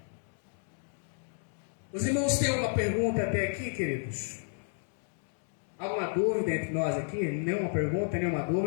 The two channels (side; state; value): right; silent; 57 dB below the other